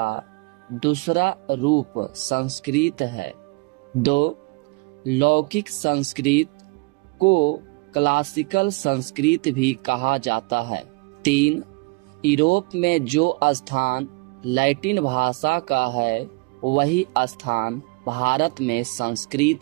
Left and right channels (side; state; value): left; quieter; 27.6 dB